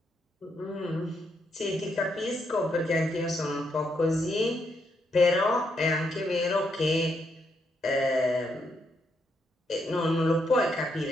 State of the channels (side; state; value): both; normal; correlation 0.78